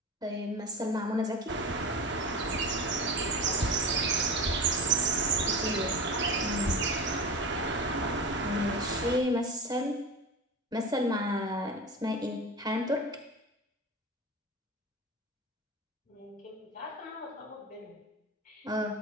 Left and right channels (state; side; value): normal; both; correlation 0.28